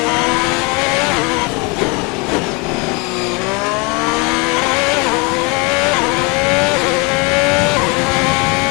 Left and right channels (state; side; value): quieter; right; 29.2 dB